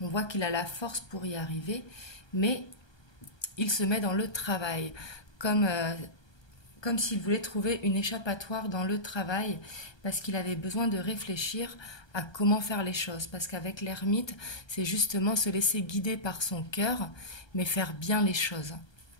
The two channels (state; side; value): late; right; 1.3 ms